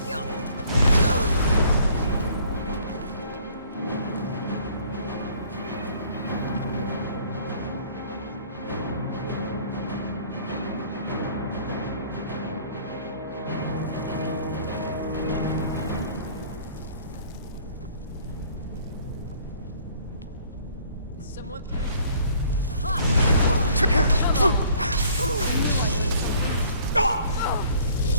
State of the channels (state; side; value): inverted; both; correlation -0.57